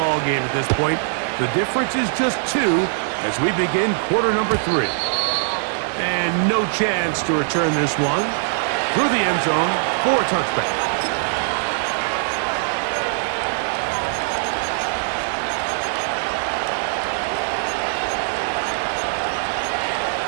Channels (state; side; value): silent; left; digital silence